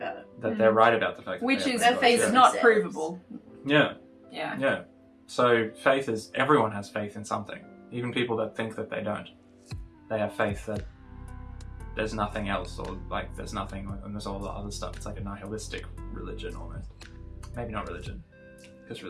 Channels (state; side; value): identical; both; correlation 1.00